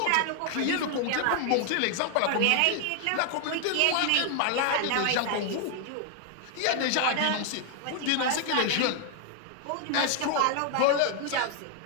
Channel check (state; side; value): different; both; correlation 0.00